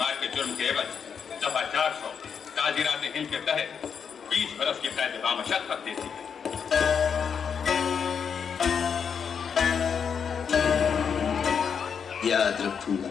के जुर्म के एवज दफा 400 ताजीरात हिंद के तहत 20 बरस की कैद बामशक्कत देती है। याद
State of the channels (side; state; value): right; quieter; 6.9 dB